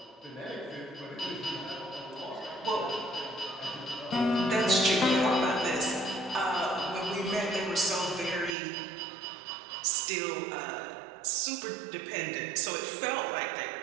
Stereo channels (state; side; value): drops out; left; at 8.6 s